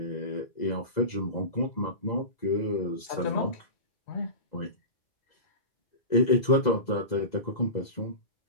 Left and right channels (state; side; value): late; right; 2.0 ms